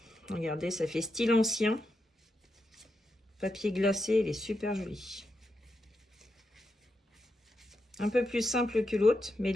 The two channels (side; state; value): both; normal; correlation 0.85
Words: Regardez, ça fait style ancien. Papier glacé, il est super joli. Un peu plus simple que l'autre, mais